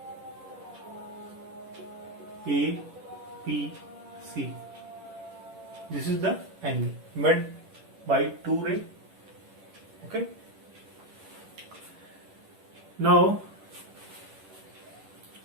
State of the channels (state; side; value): late; left; 10 ms